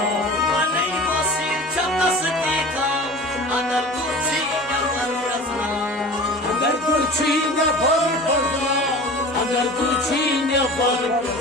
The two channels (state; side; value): normal; both; correlation 0.38